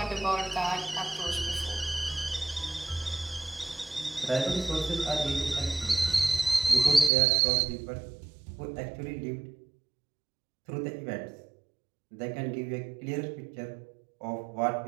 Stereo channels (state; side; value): drops out; left; at 7.1 s